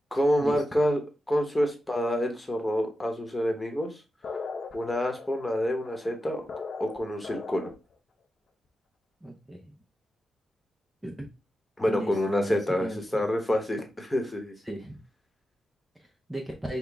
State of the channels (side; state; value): both; normal; correlation 0.91